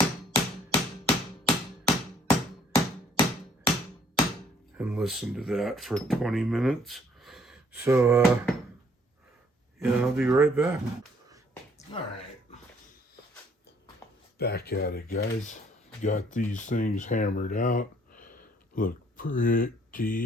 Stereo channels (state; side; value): normal; both; correlation 0.62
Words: and listen to that for 20 minutes. So, yeah, I'll be right back. All right. Back at it, guys. Got these things hammered out. Look